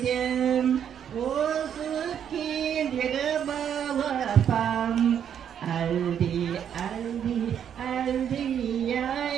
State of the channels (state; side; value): quieter; left; 8.8 dB